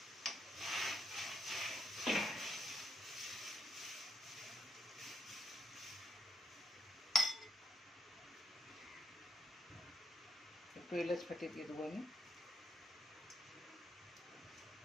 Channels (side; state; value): both; normal; correlation 0.77